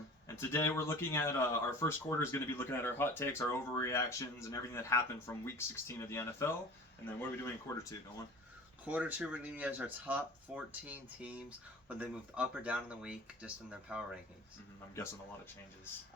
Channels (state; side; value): normal; both; correlation 0.40